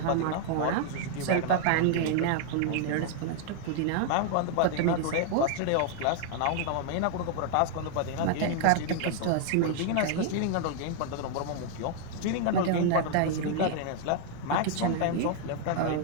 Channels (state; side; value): different; both; correlation 0.00